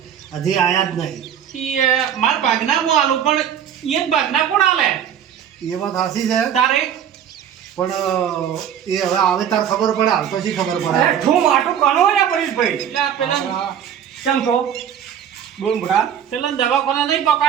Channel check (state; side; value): quieter; left; 9.2 dB